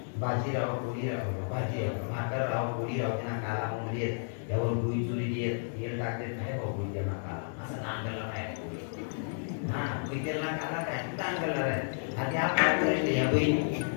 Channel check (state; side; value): silent; right; digital silence